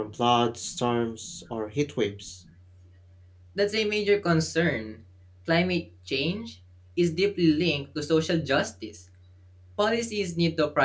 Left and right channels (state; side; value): identical; both; correlation 1.00